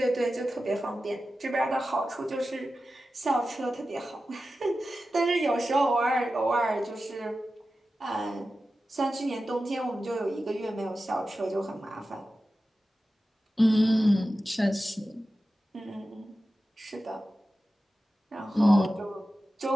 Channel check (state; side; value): normal; both; correlation 0.93